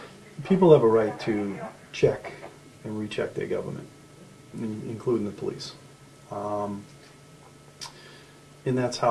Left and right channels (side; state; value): both; identical; correlation 1.00